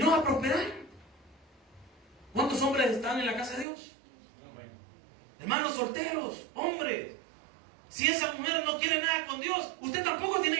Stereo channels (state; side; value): drops out; left; at 3.7 s